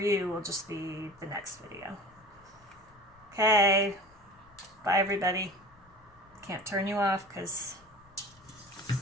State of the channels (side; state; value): left; noise; rumble, 28 dB below the sound